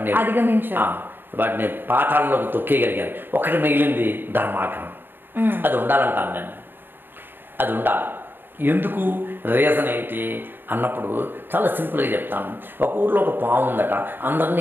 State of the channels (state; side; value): late; left; 0.096 ms